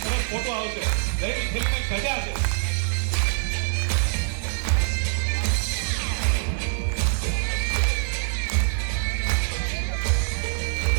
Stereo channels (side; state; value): left; silent; 62 dB below the other